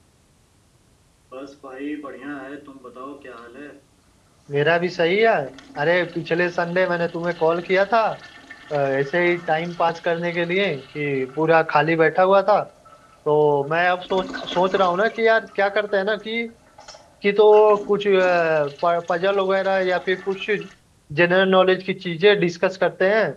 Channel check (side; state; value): both; identical; correlation 1.00